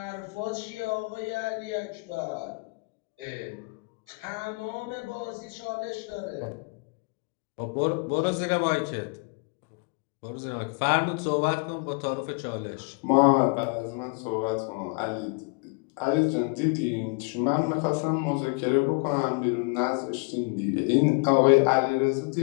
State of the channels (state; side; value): quieter; right; 33.0 dB